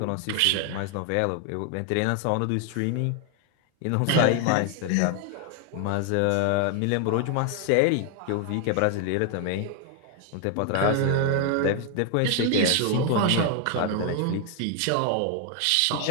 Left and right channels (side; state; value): both; different; correlation 0.00